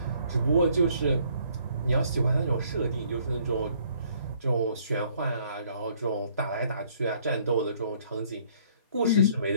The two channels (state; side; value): inverted; both; correlation -0.63